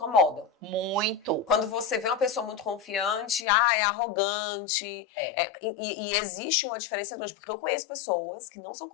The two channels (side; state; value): right; drops out; at 3.5 s